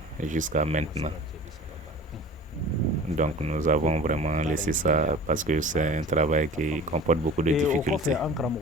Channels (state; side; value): normal; both; correlation 0.41